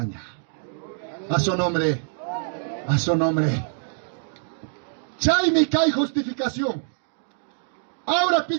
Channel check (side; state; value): left; silent; digital silence